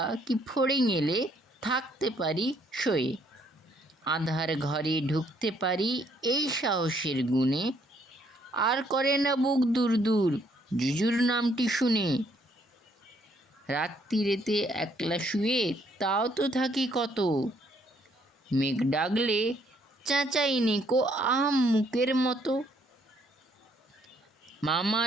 কি ফড়িং এলে থাকতে পারি শোয়ে। আঁধার ঘরে ঢুকতে পারি এই সাহসের গুণে, আর করে না বুক দূর দূর জুজুর নামটি শুনে। রাত্রিরেতে একলা শুয়ে তাও তো থাকি কত, মেঘ ডাকলে চেঁচাইনি কো আম মুখের মতো।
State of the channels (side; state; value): both; normal; correlation 0.68